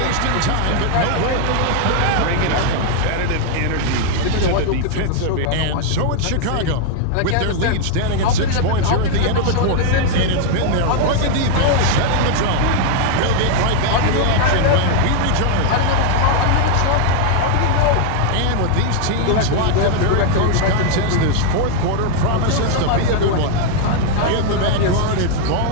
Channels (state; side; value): different; both; correlation 0.00